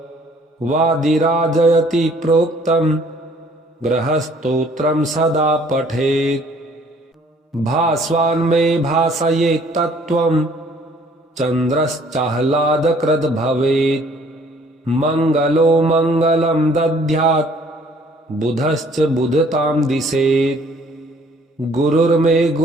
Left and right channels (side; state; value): both; normal; correlation 0.58